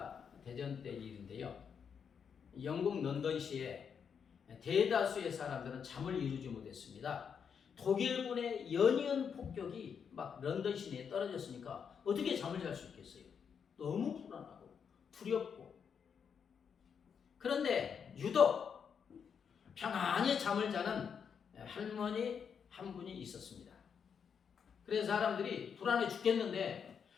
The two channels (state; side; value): quieter; right; 7.0 dB